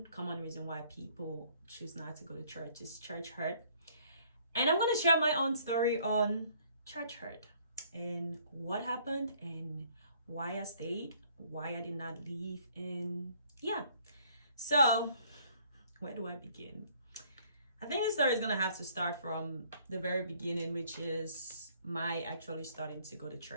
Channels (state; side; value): inverted; both; correlation -0.61